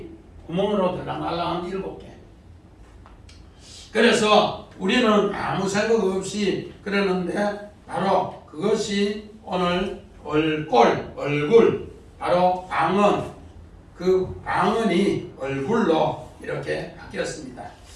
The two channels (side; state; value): both; identical; correlation 1.00